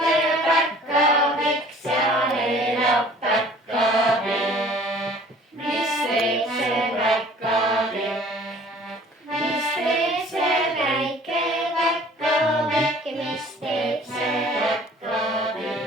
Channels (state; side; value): normal; both; correlation 0.51